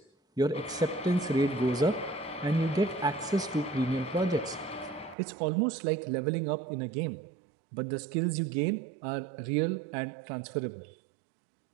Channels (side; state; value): left; drops out; at 5.2 s